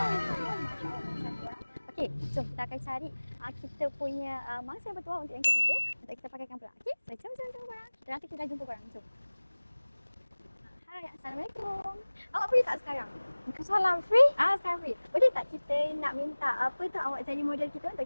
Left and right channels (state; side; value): inverted; both; correlation -1.00